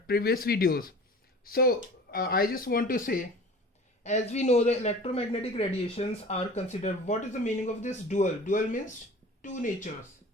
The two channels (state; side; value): normal; both; correlation 0.41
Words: previous videos. So I just want to say, as we know, the electromagnetic radiations are considered. What is the meaning of this dual? Dual means two natures.